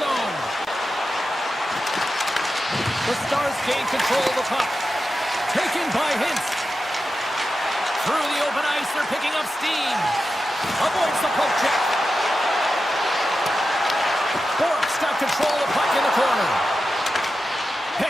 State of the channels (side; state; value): both; normal; correlation 0.91